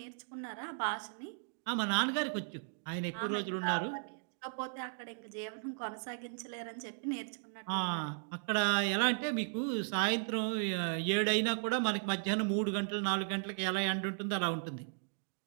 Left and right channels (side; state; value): left; silent; digital silence